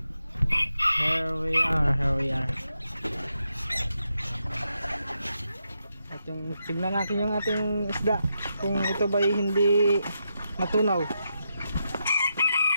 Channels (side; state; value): both; inverted; correlation -0.84